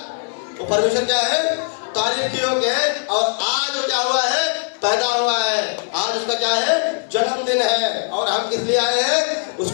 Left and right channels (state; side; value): silent; right; digital silence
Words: वो परमेश्वर क्या है? तारीफ के योग्य है। और आज वो क्या हुआ है? पैदा हुआ है। आज उसका क्या है? जन्मदिन है। और हम किस लिए आए हैं?